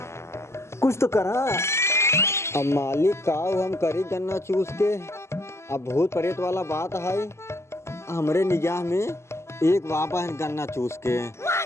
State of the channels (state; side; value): late; right; 0.13 ms